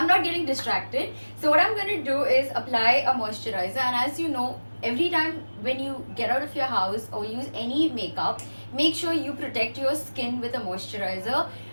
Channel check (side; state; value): both; inverted; correlation -1.00